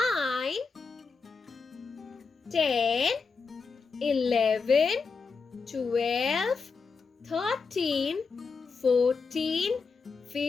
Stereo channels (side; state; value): right; quieter; 4.9 dB